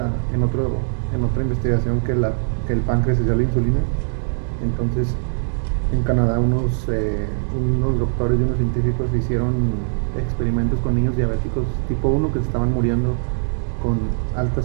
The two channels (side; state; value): left; silent; digital silence